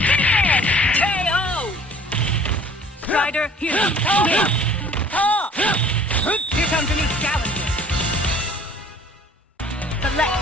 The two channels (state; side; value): normal; both; correlation 0.52